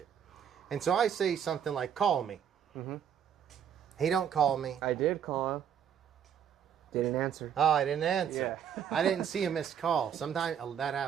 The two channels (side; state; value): left; quieter; 8.4 dB